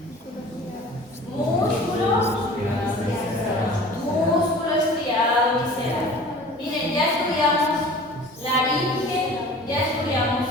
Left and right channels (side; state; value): both; normal; correlation 0.43